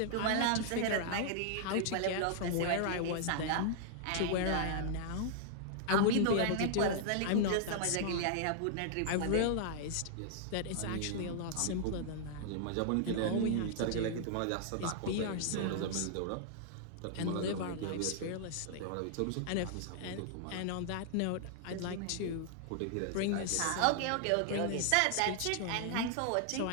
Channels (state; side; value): different; both; correlation -0.01